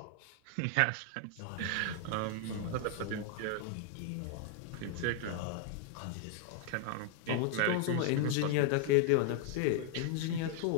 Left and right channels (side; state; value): both; different; correlation 0.00